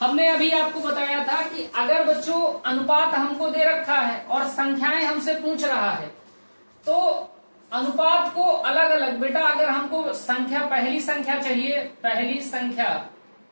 अभी आपको बताया था कि अगर बच्चों अनुपात हमको दे रखा है और संख्याएं हमसे पूछ रहा है, तो अनुपात को अलग अलग बेटा, अगर हमको संख्या पहली संख्या चाहिए, पहली संख्या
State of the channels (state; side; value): inverted; both; correlation -1.00